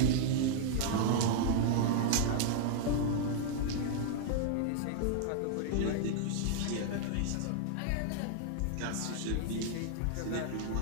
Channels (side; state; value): both; different; correlation -0.01